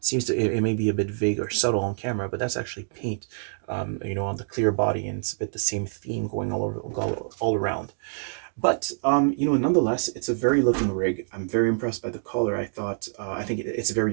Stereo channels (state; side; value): silent; left; digital silence